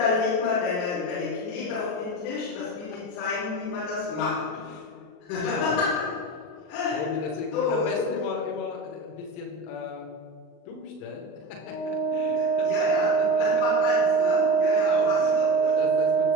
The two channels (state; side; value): late; right; 40 ms